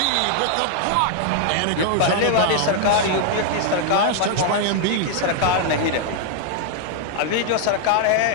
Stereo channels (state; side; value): different; both; correlation 0.00